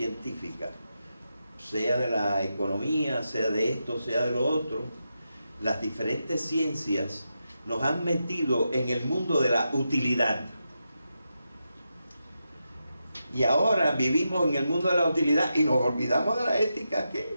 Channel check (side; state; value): both; inverted; correlation -0.87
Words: sea de la economía, sea de esto, sea de lo otro. Las diferentes ciencias nos han metido en el mundo de la utilidad. Y ahora vivimos en el mundo de la utilidad y nos olvidamos de la ética.